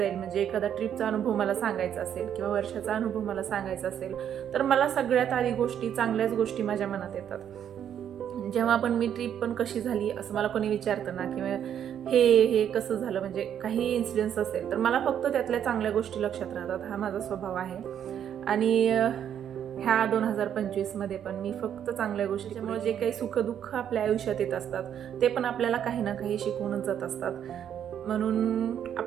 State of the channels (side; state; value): left; quieter; 9.4 dB